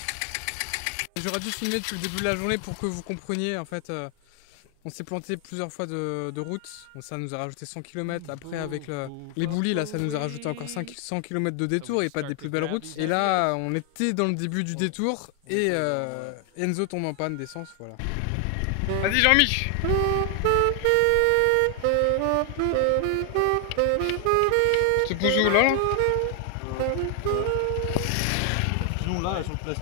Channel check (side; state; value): both; different; correlation 0.00